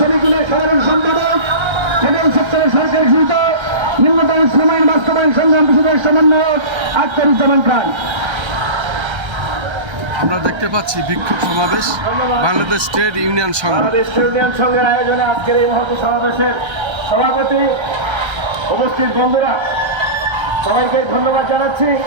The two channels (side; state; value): left; late; 1.3 ms